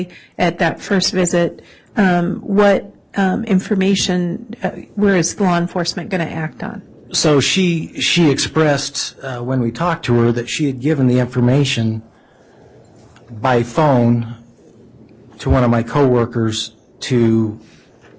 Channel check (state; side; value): identical; both; correlation 1.00